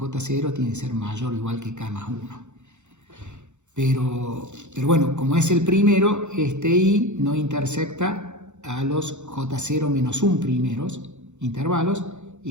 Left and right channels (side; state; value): left; late; 0.83 ms